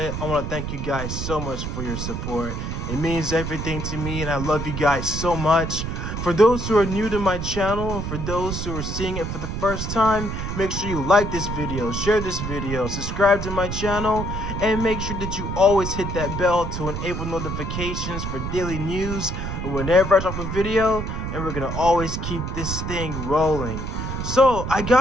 I want to thank you guys so much for your support. It means everything to me, and I love you guys so much. For those who are new to my channel, and for those who are seeing it for the first time, make sure you like this video, share this video, subscribe to my channel, and make sure that you always hit that bell to enable notifications for daily news whenever I drop a video, and we're gonna always keep this thing rolling. So, I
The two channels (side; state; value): right; noise; rumble, 4 dB below the sound